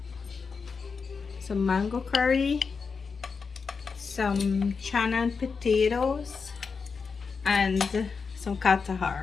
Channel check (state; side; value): quieter; right; 5.2 dB